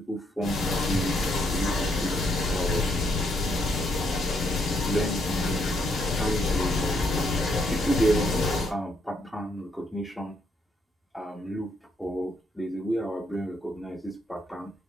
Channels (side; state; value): both; normal; correlation 0.74